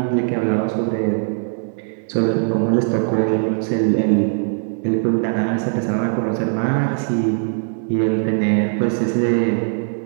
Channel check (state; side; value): silent; left; 65 dB below the other